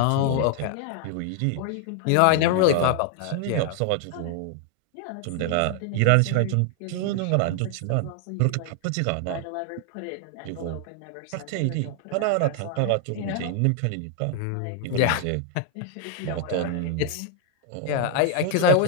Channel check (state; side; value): different; both; correlation 0.00